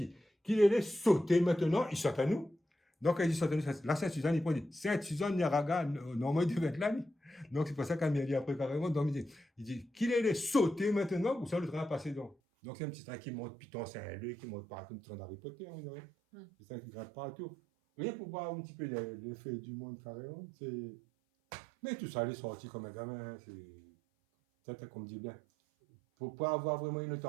qu'il allait sauter maintenant, il saute à nous. Donc, quand il dit saute à nous, là, Sainte-Suzanne, il dit Sainte-Suzanne, Niaraga, normalement, il devait être là. Donc, c'est pour ça qu'il m'a dit après carrément. Donc, il dit qu'il allait sauter maintenant, ou ça, le train a passé donc. Donc, c'est un petit train qui monte Python Saint-Louis, qui monte partout, le train d'Harry Potter, on dirait. C'est ça qui gratte partout. Rien pour voir un petit peu l'effet du monde carrément. Mais tout ça, il est sorti comme un gamin. C'est comme dit bien. Pour pas avoir vraiment une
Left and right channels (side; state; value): left; drops out; at 12.4 s